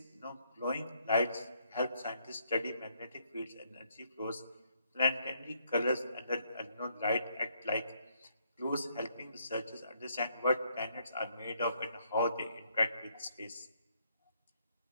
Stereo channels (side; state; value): both; inverted; correlation -0.71